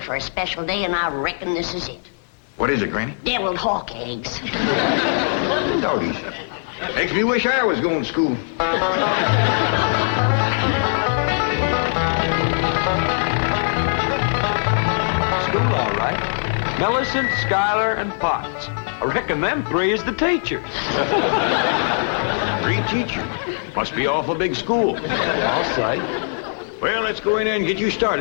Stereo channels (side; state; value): right; silent; digital silence